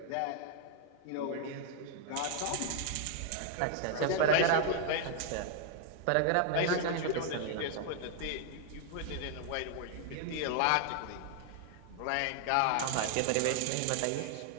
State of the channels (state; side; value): different; both; correlation 0.00